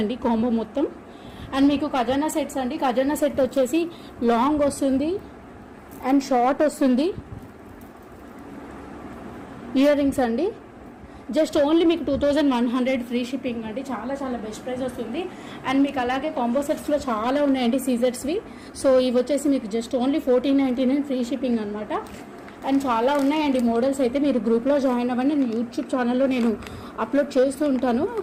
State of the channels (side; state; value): both; identical; correlation 1.00